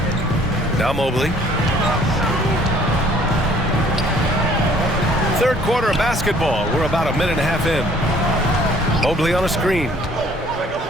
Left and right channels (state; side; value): normal; both; correlation 0.57